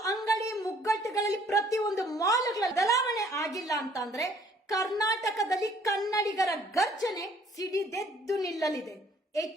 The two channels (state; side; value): normal; both; correlation 0.60